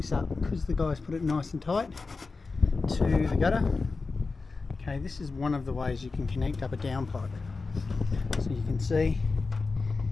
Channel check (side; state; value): right; quieter; 4.1 dB